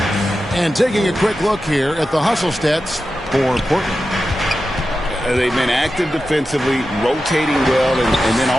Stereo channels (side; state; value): both; normal; correlation 0.92